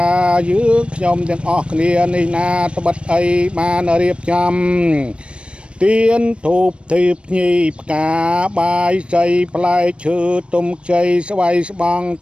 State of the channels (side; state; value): left; late; 0.059 ms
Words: យើងខ្ញុំទាំងអស់គ្នានេះណាត្បិតអីបានរៀបចំទៀនធូបធីបញីផ្កាបាយសីផ្លែឈើទុំជ័យស្វ័យស្បង់